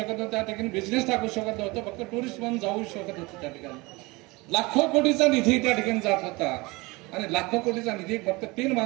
नव्हतं. त्या ठिकाणी बिझनेस टाकू शकत नव्हतं. फक्त टुरिस्ट म्हणून जाऊ शकत होतं. त्या ठिकाणी लाखो कोटीचा निधी त्या ठिकाणी जात होता. आणि लाखो कोटीचा निधी फक्त 3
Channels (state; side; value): quieter; left; 24.0 dB